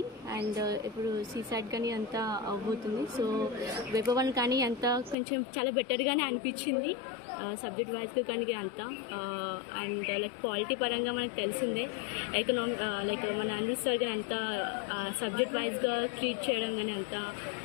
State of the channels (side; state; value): right; drops out; at 5.2 s